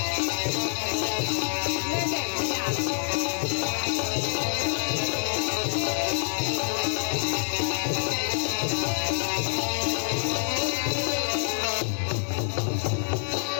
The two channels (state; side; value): silent; right; 60 dB below the other